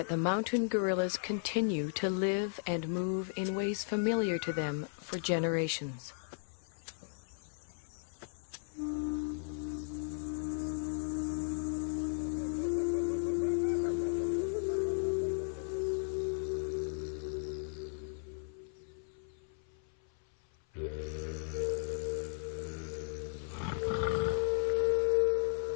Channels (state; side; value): silent; right; 54 dB below the other